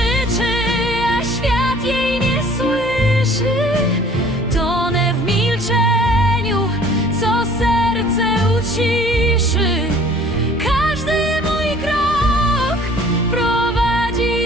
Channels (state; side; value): normal; both; correlation 0.52